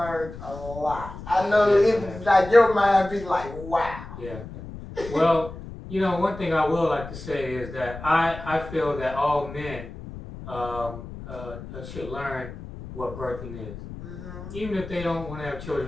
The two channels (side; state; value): left; noise; rumble, 12 dB below the sound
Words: a lot. I know Yes, it I have. like your mind be like, wow. Yeah. Well, you know, one thing I will like to say is that I feel that all men should learn what birthing is. Even if they don't want to have